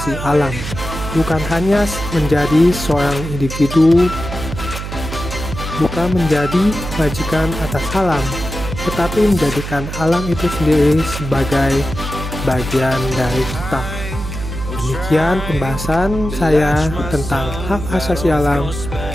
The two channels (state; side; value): noise; right; hum, 7 dB below the sound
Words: alam, bukan hanya menjadi seorang individu, bukan menjadi majikan atas alam, tetapi menjadikan alam itu sendiri sebagai bagian dari kita. Demikian pembahasan saya tentang hak asasi alam.